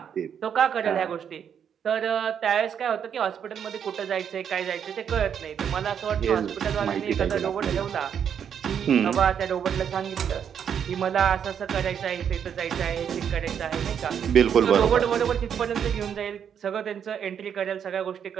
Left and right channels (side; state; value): left; quieter; 8.2 dB